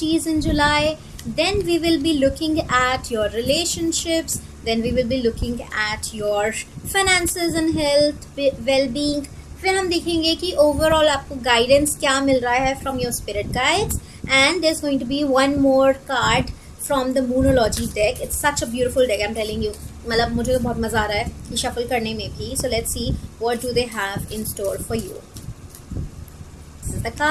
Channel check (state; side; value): identical; both; correlation 1.00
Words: in July. Then we will be looking at your relationships. Then we will be looking at your finances and health, well-being. फिर हम देखेंगे कि overall आपको guidance क्या मिल रहा है from your spirit guides. And there's going to be one more card from the Moonology deck. It's such a beautiful deck, I'm telling you. मतलब मुझे तो बहुत मज़ा आ रहा है ये shuffle करने में भी. So let's see what do they have in store for you. This is the